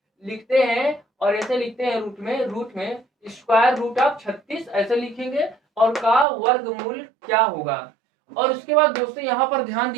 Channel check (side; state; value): left; drops out; at 6.2 s